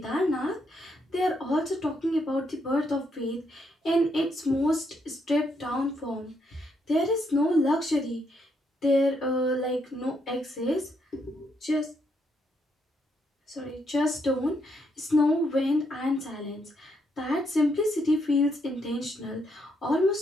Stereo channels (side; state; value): both; normal; correlation 0.76